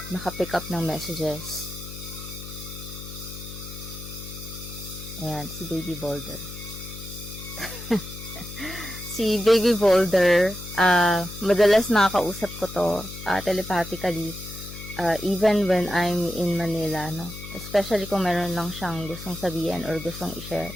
maka-pick up ng messages. Ayan, si Baby Boulder. Si Baby Boulder, madalas nakakausap ko to telepathically, even when I'm in Manila, no? Especially kung meron lang siyang gustong sabihin or gustong i-share.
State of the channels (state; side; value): noise; left; hum, 12 dB below the sound